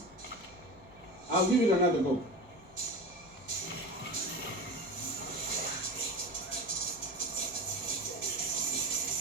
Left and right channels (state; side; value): normal; both; correlation 0.29